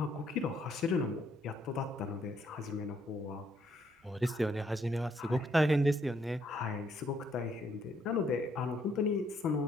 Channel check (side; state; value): both; normal; correlation 0.71